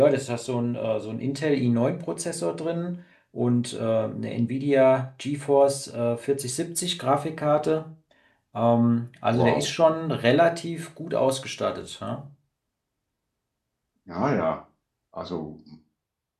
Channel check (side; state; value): both; identical; correlation 1.00